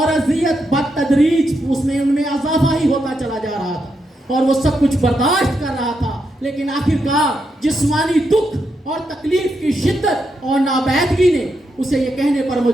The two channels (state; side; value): normal; both; correlation 0.83